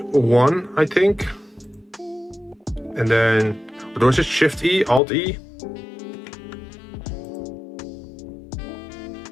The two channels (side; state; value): right; drops out; at 5.0 s